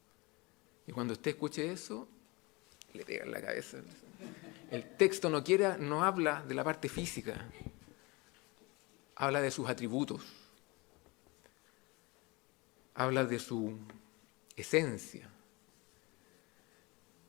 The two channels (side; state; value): right; quieter; 25.5 dB